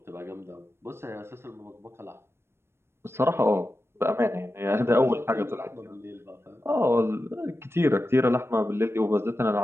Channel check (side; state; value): left; late; 0.12 ms